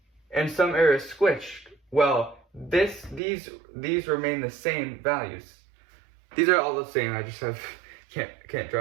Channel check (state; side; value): drops out; left; at 3.2 s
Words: and some areas squished. Well, these remain the same values. These are all the same. I just can't